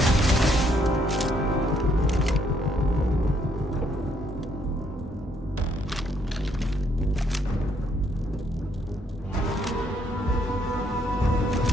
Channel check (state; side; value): normal; both; correlation 0.70